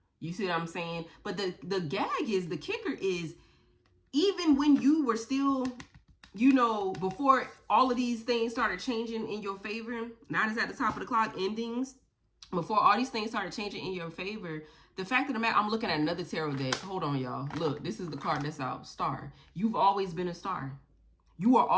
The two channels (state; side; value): identical; both; correlation 1.00